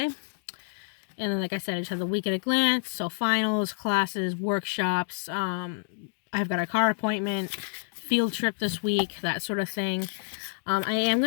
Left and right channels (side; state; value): right; silent; digital silence